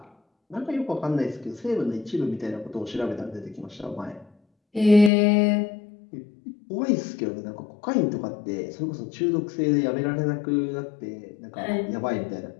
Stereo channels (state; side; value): drops out; right; at 5.1 s